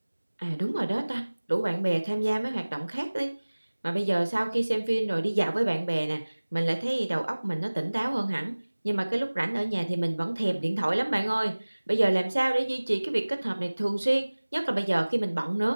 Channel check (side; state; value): both; inverted; correlation -1.00